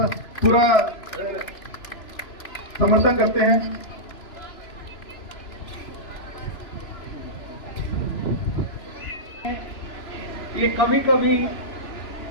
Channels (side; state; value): right; late; 2.9 ms